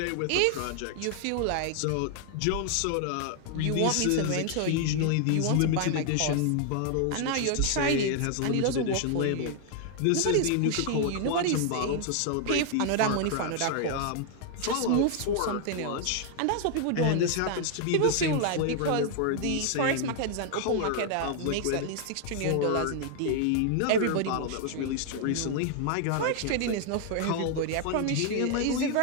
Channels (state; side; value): different; both; correlation 0.00